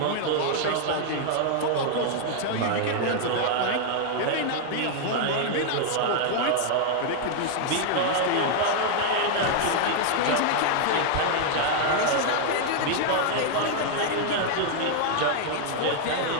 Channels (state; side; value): different; both; correlation 0.00